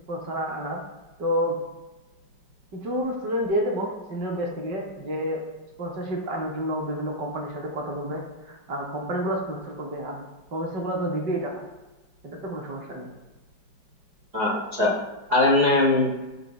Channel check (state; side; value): late; left; 4.7 ms